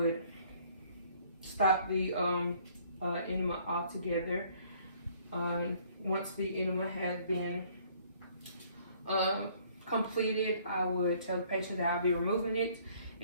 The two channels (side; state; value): both; inverted; correlation -0.61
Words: stop the enema altogether. Once the enema has been completed, I would tell the patient that I'll be removing it,